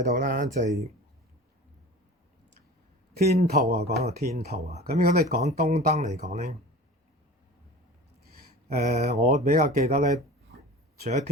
到啦，就係天兔啊，講到天兔啊。咁如果你講東燈嚟講咧，我比較記得咧，除咗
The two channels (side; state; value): both; normal; correlation 0.38